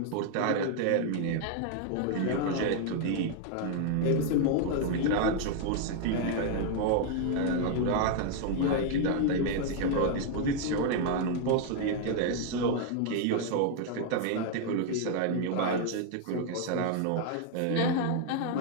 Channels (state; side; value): different; both; correlation 0.00